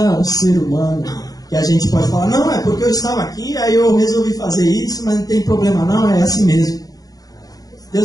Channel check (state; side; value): late; right; 0.18 ms